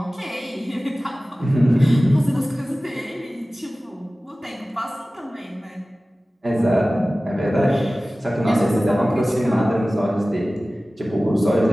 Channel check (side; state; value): both; normal; correlation 0.97